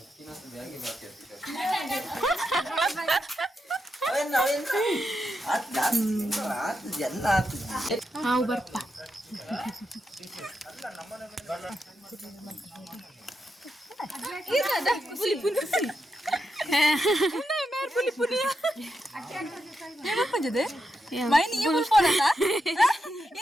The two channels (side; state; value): both; normal; correlation 0.85